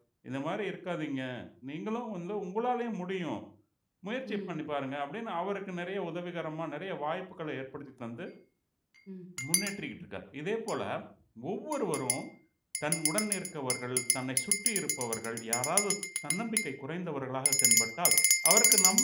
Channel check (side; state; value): both; identical; correlation 1.00